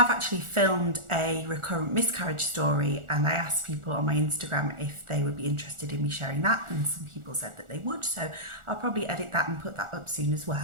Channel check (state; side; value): late; left; 1.4 ms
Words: actually filmed a recurrent miscarriage story, and I asked people on my Instagram if they would be interested in me sharing that, and some people said that they would, so I'll probably edit that and put that up soon as